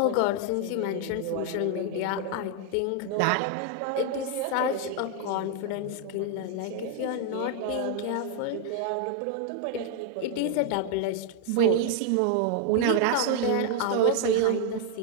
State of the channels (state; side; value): different; both; correlation 0.00